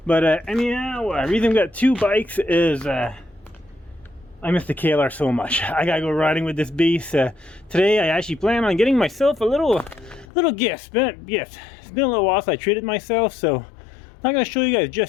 but anyhow, the reason we got 2 bikes is I miss the KLR so much. I gotta go riding with this beast. Today I actually plan on getting myself a little gift. It's been a little while since I treated myself, so I'm not gonna show you guys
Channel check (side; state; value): right; drops out; at 10.2 s